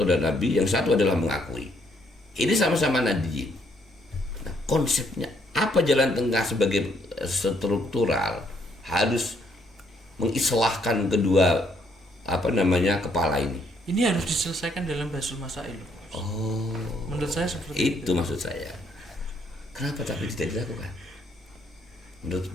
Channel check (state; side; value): normal; both; correlation 0.70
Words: dan Nabi, yang satu adalah mengakui. Ini sama-sama nadiyin. Nah, konsepnya apa jalan tengah sebagai struktural harus mengislahkan kedua kepala ini. Ini harus diselesaikan dalam Basul Masail. Oh, menurut saya seperti itu maksud saya. Kenapa tapi tidak dilakukan?